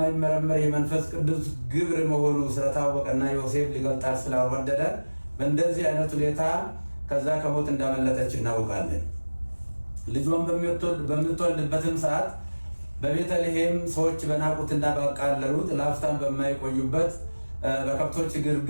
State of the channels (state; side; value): inverted; both; correlation -1.00